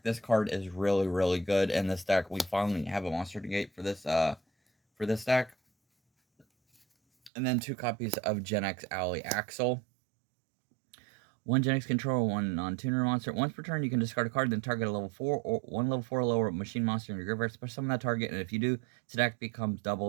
This card is really, really good in this deck. We finally have a monster negate for this deck. And then 2 copies of Genex Ally Axel. 1 Genex controller, 1 non-tuner monster. Once per turn, you can discard a card, then target a level 4 or 1 level 4 or lower machine monster in your graveyard. Special summon that target, and if you do, its attack becomes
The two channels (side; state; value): left; drops out; at 7.3 s